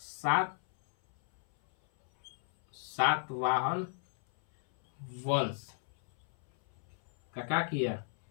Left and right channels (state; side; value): silent; right; 55 dB below the other